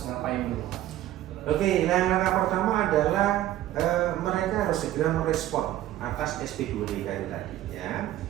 ngapain dulu? Oke, langkah pertama adalah mereka harus segera merespon atas SP2DK tadi ya.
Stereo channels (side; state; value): left; quieter; 13.6 dB